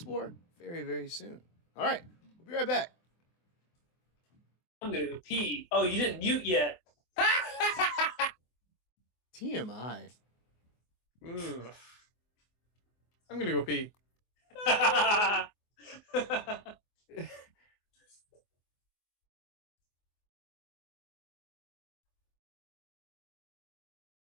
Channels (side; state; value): right; late; 24 ms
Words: very, very soon. All right, we'll be right back. I'm gonna go pee. Oh, you didn't mute yet. TMI. Ugh. I'm gonna go pee.